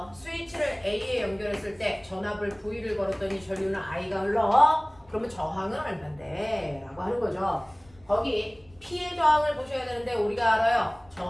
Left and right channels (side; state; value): left; noise; rumble, 27 dB below the sound